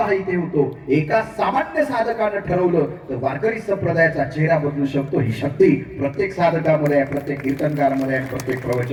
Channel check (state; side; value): identical; both; correlation 1.00